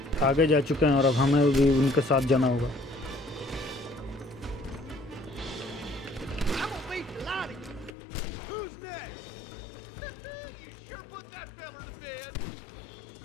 आगे जा चुके हैं और अब हमें भी उनके साथ जाना होगा। I'm gonna beat the lot of you. Who's next? You sure put that fella to bed.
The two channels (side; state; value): right; drops out; at 7.9 s